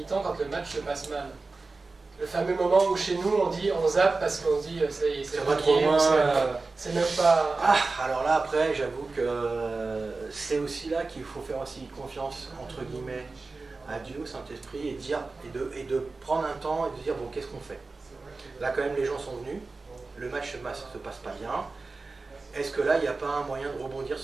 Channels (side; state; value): left; quieter; 3.7 dB